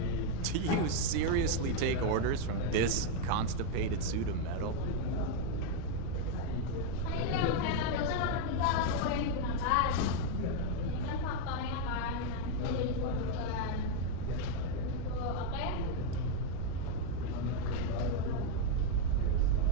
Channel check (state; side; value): different; both; correlation 0.00